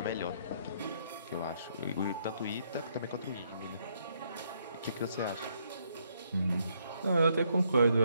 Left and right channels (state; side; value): inverted; both; correlation -0.72